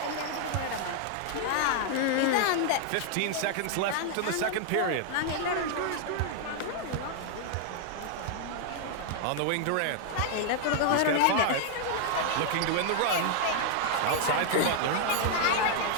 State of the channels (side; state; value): both; different; correlation 0.00